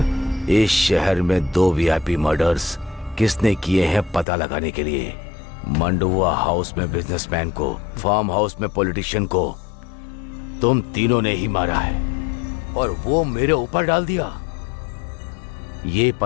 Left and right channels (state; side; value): drops out; right; at 4.2 s